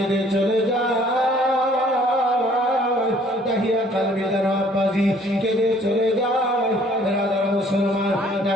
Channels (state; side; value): normal; both; correlation 0.59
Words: চলে যায়। দাহিয়া কালবি যেন আব্বাসী কেঁদে চলে যায়। বিরাদার মুসলমান,